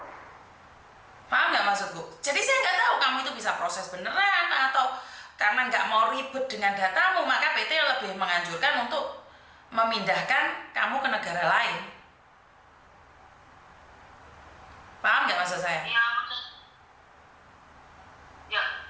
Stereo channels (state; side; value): identical; both; correlation 1.00